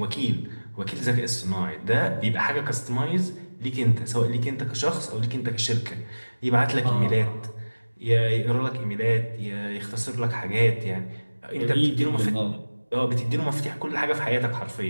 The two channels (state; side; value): inverted; both; correlation -1.00